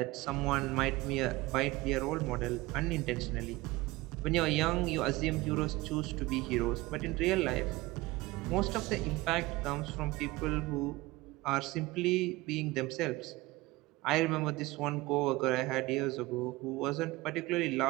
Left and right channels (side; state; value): left; quieter; 20.0 dB